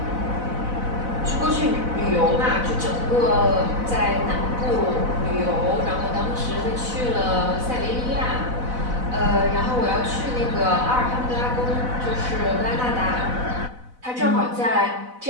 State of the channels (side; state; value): left; late; 4.0 ms